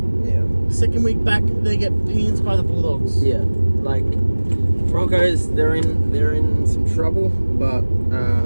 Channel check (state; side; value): inverted; both; correlation -1.00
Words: Yeah. Second week back, they get pins by the Bulldogs. Yeah. Like Broncos, they're in some trouble, but